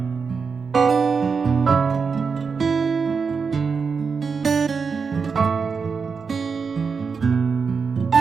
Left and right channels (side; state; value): left; quieter; 5.4 dB